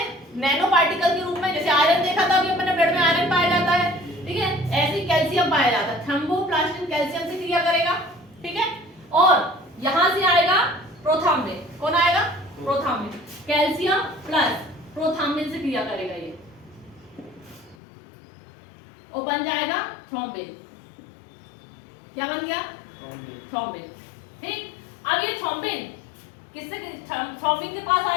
नैनो पार्टिकल के रूप में, जैसे आयरन देखा था अभी अपने ब्लड में आयरन पाया जाता है, ठीक है, ऐसे ही कैल्शियम पाया जाता है, थ्रोम्बोप्लास्टिन कैल्शियम से क्रिया करेगा। ठीक है, और यहां से आएगा प्रोथाम्बिन, कौन आएगा, प्रोथाम्बिन, कैल्शियम प्लस प्रोथाम्बिन से क्रिया करेगा ये, और बन जाएगा थ्रोम्बिन, क्या बन गया, थ्रोम्बिन। ठीक, अब ये थ्रोम्बिन किससे, थ्रोम्बिन के पास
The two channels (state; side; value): drops out; right; at 17.8 s